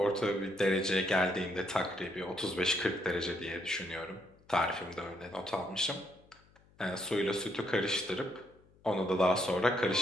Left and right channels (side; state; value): left; noise; hum, 30 dB below the sound